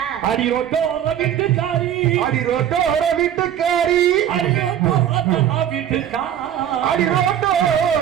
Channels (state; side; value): quieter; left; 10.3 dB